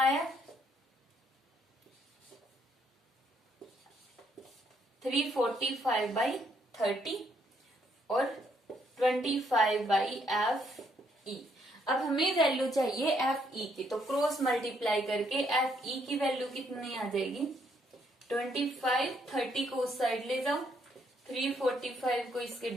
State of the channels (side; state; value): both; normal; correlation 0.71